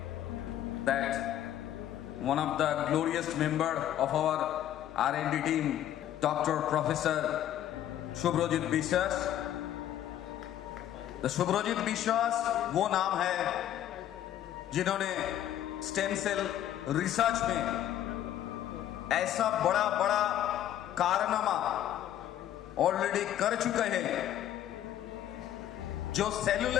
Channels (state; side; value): quieter; right; 11.6 dB